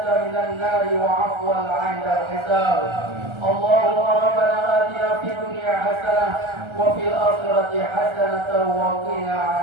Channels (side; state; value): left; late; 1.3 ms